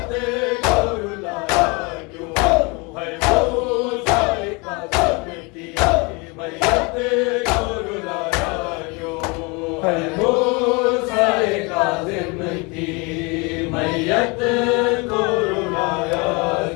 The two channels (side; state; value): right; quieter; 28.6 dB